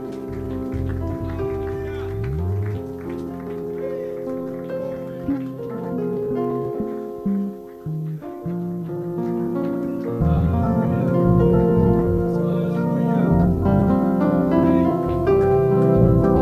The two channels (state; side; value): identical; both; correlation 1.00